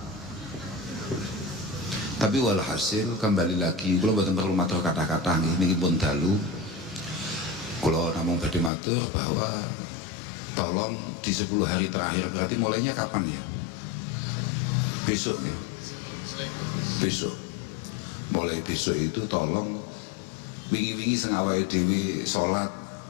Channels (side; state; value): right; drops out; at 8.7 s